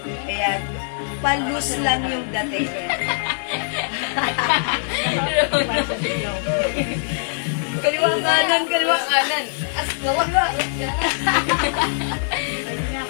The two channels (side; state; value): right; silent; digital silence